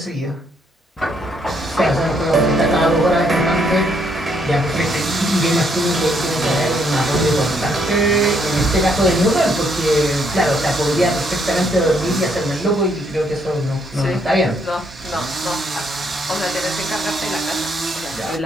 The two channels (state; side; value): normal; both; correlation 0.71